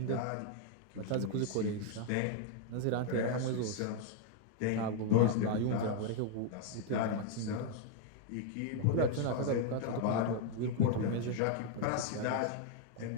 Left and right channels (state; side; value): different; both; correlation 0.00